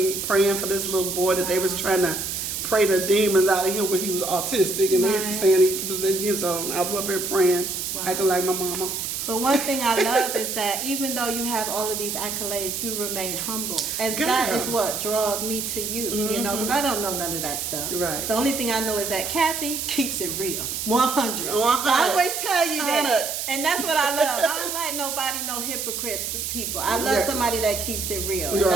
praying for this little boy that they was trying to pray the demons out of him when he was autistic, and they were saying he was so I was up here praying, acting like my mama. But one thing I love is that even though you have all of these accolades, you remain humble. And that is what draws me to you, because I don't know none of that stuff. Right. The only thing I know is that Kathy keeps it real. 100. I always tell you that. And that's what I love. I don't like nobody, no hypocrite people. I love somebody that keeps it real. And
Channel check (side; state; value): right; noise; hiss, 3 dB below the sound